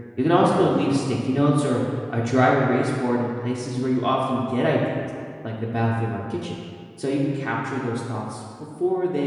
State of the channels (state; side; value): identical; both; correlation 1.00